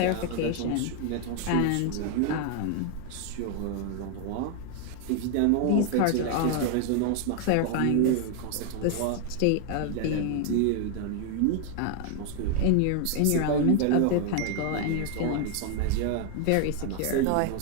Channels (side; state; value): both; different; correlation 0.00